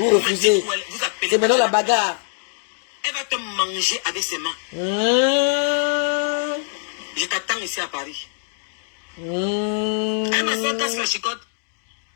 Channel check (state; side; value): silent; right; digital silence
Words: refusez. C'est maintenant la bagarre. Elle va te manger avec ses mains. Je t'attends ici à Paris. Elle m'a fait casse la chicotte.